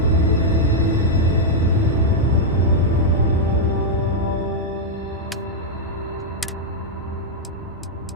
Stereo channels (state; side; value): normal; both; correlation -0.03